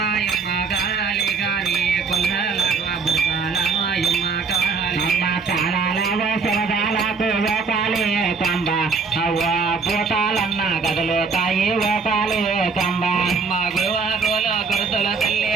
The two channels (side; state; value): left; quieter; 4.8 dB